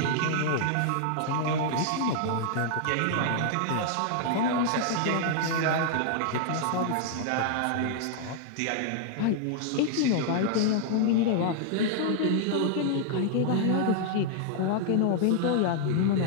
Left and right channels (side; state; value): both; different; correlation 0.00